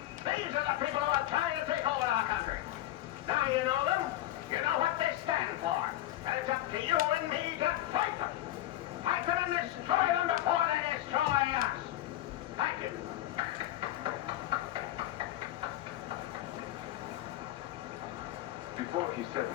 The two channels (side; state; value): right; quieter; 14.2 dB